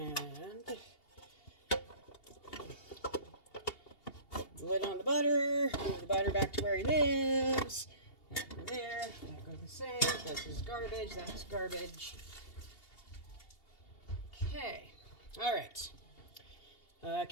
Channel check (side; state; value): right; late; 2.8 ms